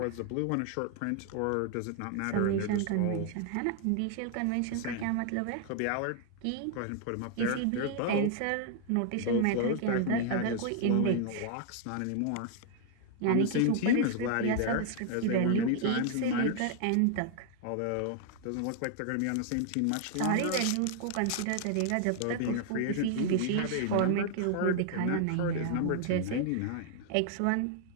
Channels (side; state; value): both; different; correlation 0.00